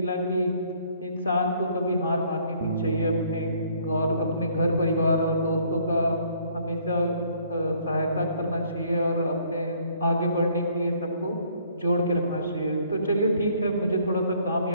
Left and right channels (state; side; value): inverted; both; correlation -0.62